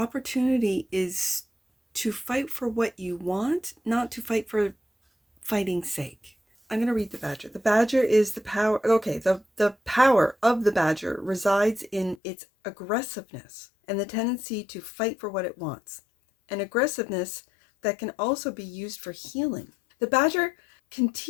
is to fight for what you want, not to fight for fighting's sake. I'm going to read the Badger. The Badger is the power. Okay, the power of the Badger resides in its aggressiveness and the tendency to fight for what it wants. An aggressiveness that can also be used for healing. The Badger can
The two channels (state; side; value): drops out; right; at 12.2 s